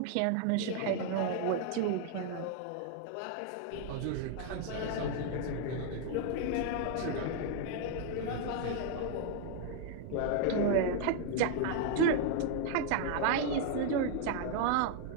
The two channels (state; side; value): different; both; correlation 0.00